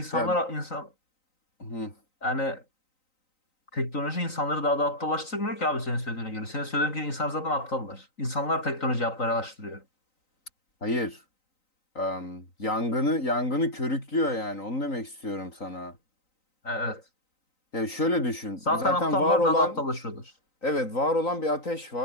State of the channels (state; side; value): late; right; 3.9 ms